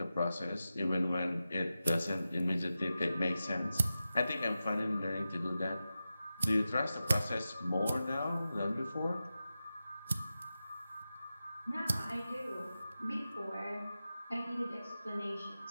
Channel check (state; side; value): inverted; both; correlation -0.93